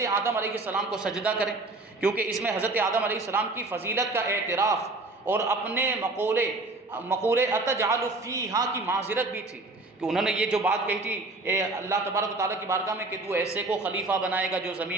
آدم علیہ السلام کو سجدہ کریں، کیونکہ اس میں حضرت آدم علیہ السلام کی فضیلت کا اعتراف اور اپنے مقولے اتجعل فیہا کی معذرت بھی تھی، کہ انہوں نے یہ جو بات کہی تھی اے اللہ تبارک و تعالیٰ کی بارگاہ میں کہ تو ایسے کو خلیفہ بنائے گا جو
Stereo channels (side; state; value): left; quieter; 3.1 dB